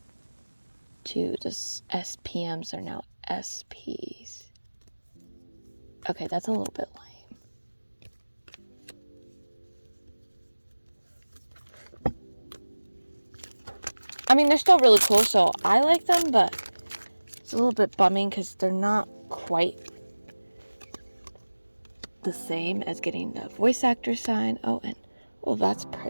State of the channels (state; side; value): inverted; both; correlation -1.00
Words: to the SPMs are now SPs. Okay, that's a little bit lame. I mean, they're still really cool, so I like them, but it's a little bit bumming because they're not quite the same as getting the voice actor sign. Oh, and that's